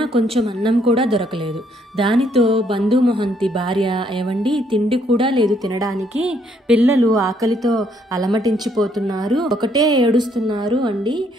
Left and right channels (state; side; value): normal; both; correlation 0.69